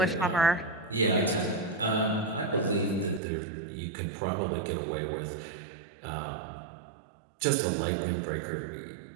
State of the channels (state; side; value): drops out; left; at 3.2 s